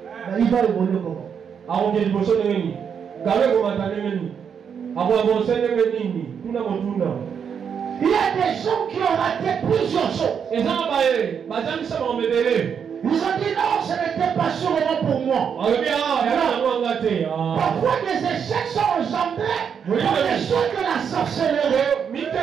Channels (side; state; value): left; quieter; 7.3 dB